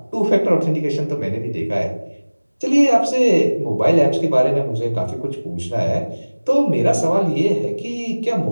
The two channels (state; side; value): inverted; both; correlation -1.00